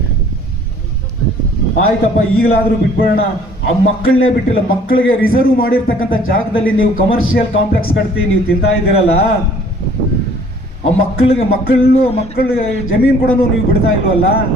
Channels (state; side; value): normal; both; correlation 0.55